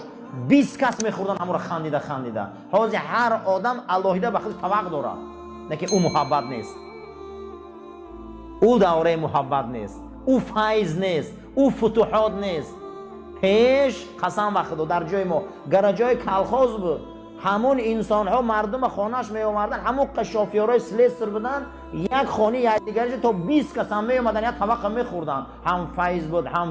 20 کس میخوردن همون خندیده خندیده. حاضر هر آدم الهیده به خودش طبق داره. نه که او محبت نیست. او دوره محبت نیست، او فیض نیست، او فتوحات نیست. پیش قسم به خدا در جای ما گرجای کلخاز بود، همون انسان ها مردم خانهش می آوردن، همون قشافیارای سلیستر بودن، یک خانه یک دیگرش تا 20 کس هم می اومدن یک طبق می خوردن. هم فیض بود،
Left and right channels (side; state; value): both; identical; correlation 1.00